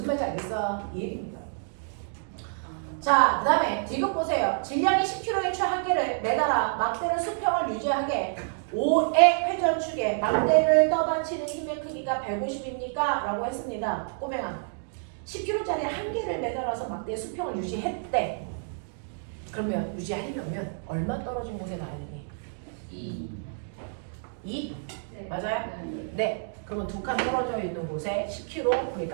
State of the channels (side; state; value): left; silent; digital silence